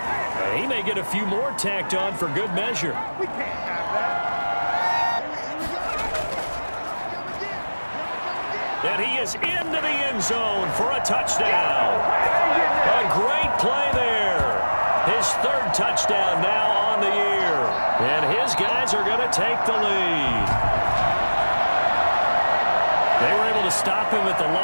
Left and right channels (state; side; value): inverted; both; correlation -1.00